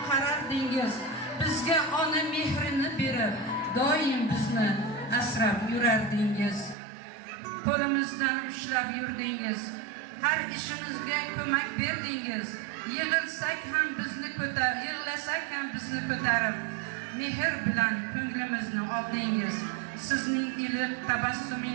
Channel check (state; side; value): drops out; left; at 6.8 s